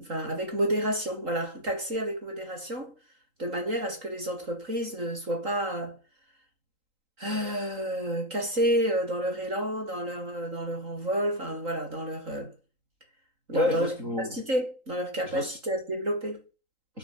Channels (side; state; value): left; late; 3.8 ms